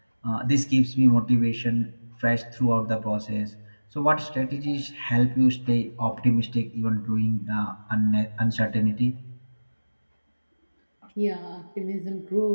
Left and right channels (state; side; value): inverted; both; correlation -1.00